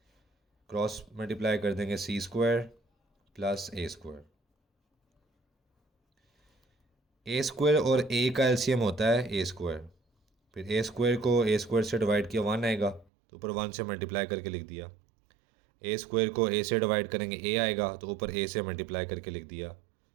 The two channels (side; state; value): left; drops out; at 13.1 s